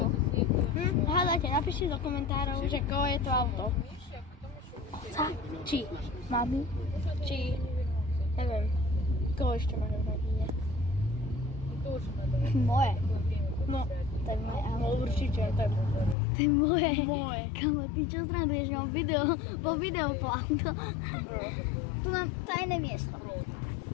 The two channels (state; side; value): drops out; right; at 16.2 s